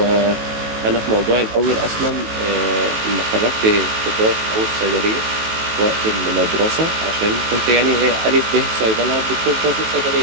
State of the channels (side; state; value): left; late; 18 ms